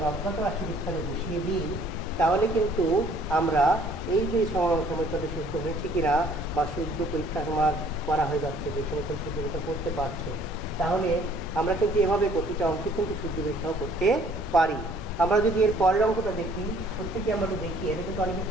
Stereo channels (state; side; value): normal; both; correlation 0.58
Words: অজ্ঞাত রাশির স্থানে বসিয়ে দিই, তাহলে কিন্তু আমরা এই যে সমীকরণটি শুদ্ধ হয়েছে কিনা বা শুদ্ধ পরীক্ষা আমার করা হয়ে যাচ্ছে, যে সমীকরণ শুদ্ধ পরীক্ষা করতে পারছো, তাহলে আমরা কিন্তু এভাবে প্রতিটা অঙ্কে কিন্তু শুদ্ধ পরীক্ষাও করতে পারি। আমরা যদি এর পরের অঙ্কটা দেখি, প্রত্যেকে আমরা তো দেখি, এটা কিন্তু অনেকে